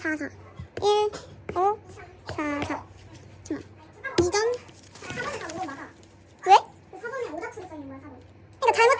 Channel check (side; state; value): both; identical; correlation 1.00